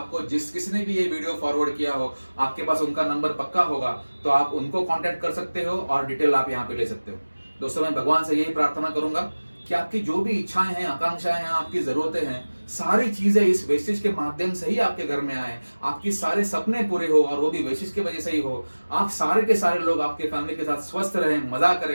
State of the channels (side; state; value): both; inverted; correlation -1.00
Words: जिस किसी ने भी ये वीडियो फॉरवर्ड किया हो, आपके पास उनका नंबर पक्का होगा, तो आप उनको कांटेक्ट कर सकते हो और डिटेल आप यहाँ पे ले सकते हो। दोस्तों मैं भगवान से यही प्रार्थना करूंगा कि आपकी जो भी इच्छाएं हैं, आकांक्षाएं हैं, आपकी जरूरतें हैं, सारी चीजें इस वेस्टेज के माध्यम से ही आपके घर में आए, आपकी सारे सपने पूरे हो, और वो भी वेस्टेज की वजह से ही हो। आप सारे के सारे लोग आपके फैमिली के साथ स्वस्थ रहें, मजा